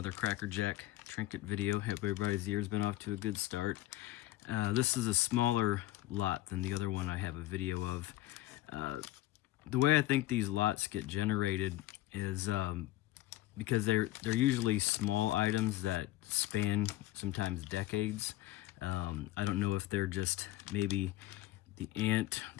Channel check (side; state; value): right; quieter; 15.9 dB